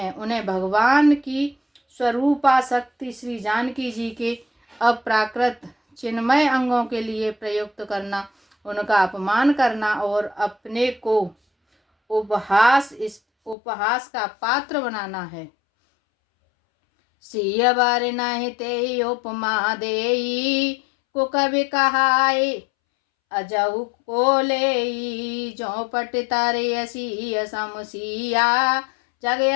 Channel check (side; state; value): right; drops out; at 13.6 s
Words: उन्हें भगवान की स्वरूपाशक्ति श्री जानकी जी के अप्राकृत चिन्मय अंगों के लिए प्रयुक्त करना, उनका अपमान करना और अपने को उपहास का पात्र बनाना है। सिय बर नहीं ते उपमा देई, को कवि कहाए अजहु को लेई। जो पट तारे असी समसिया, जग